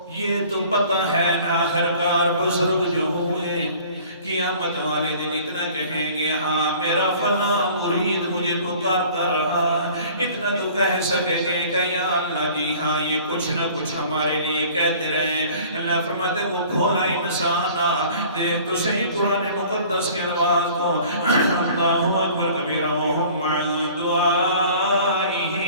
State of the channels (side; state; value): both; inverted; correlation -0.49